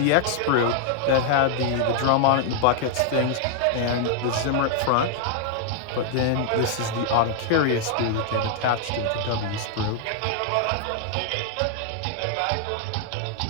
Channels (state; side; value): different; both; correlation 0.00